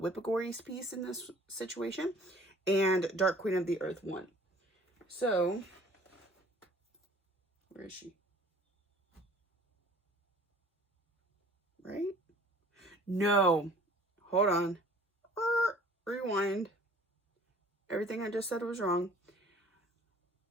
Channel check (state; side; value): normal; both; correlation 0.51